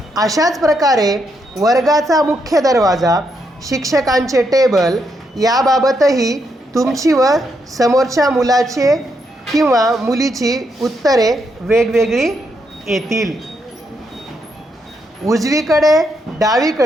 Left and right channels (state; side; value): normal; both; correlation 0.79